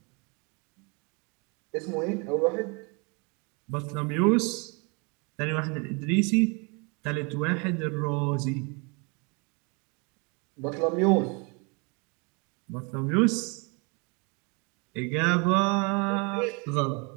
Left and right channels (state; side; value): quieter; left; 31.7 dB